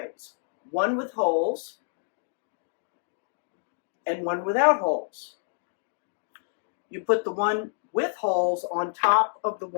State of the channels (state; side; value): silent; right; digital silence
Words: one with holes and one without holes. You put the one with holes on top of the